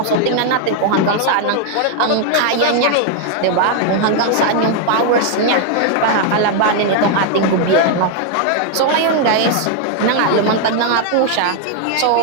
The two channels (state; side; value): different; both; correlation 0.00